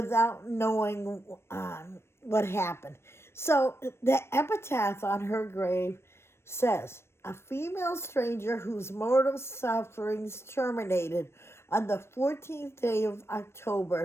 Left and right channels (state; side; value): late; right; 0.12 ms